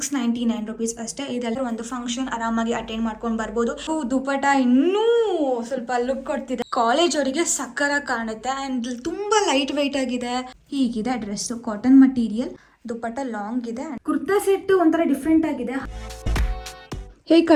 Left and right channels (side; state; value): both; identical; correlation 1.00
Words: ರುಪೀಸ್ ಅಷ್ಟೇ. ಇದೆಲ್ಲ ಒಂದು ಫಂಕ್ಷನ್ ಆರಾಮಾಗಿ ಅಟೆಂಡ್ ಮಾಡ್ಕೊಂಡು ಬರ್ಬೋದು. ದುಪಟ ಇನ್ನೂ ಸ್ವಲ್ಪ ಲುಕ್ ಕೊಡ್ತಿದೆ. ಕಾಲೇಜ್ ಅವರಿಗೆ ಸಕ್ಕರ ಕಾಣುತ್ತೆ ಅಂಡ್ ತುಂಬಾ ಲೈಟ್ ವೆಯ್ಟ್ ಆಗಿದೆ. ಹೀಗಿದೆ dress, cotton material, dupatta long ಇದೆ. ಕುರ್ತಾ ಸೆಟ್ ಒಂಥರ ಡಿಫ್ರೆಂಟ್ ಆಗಿದೆ. ಹೇಗೆ